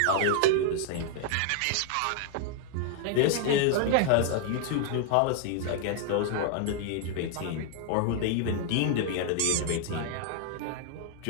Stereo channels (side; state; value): both; different; correlation 0.00